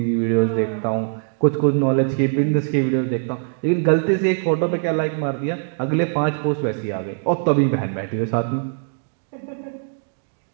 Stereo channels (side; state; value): left; silent; digital silence